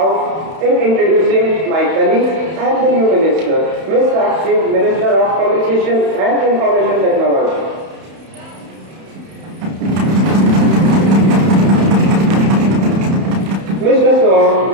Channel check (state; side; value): late; left; 31 ms